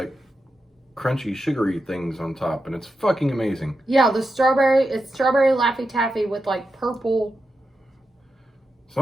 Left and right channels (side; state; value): both; normal; correlation 0.88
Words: crunchy, sugary things on top, and it's fucking amazing. Yeah, it's strawberry Laffy Taffy with like purple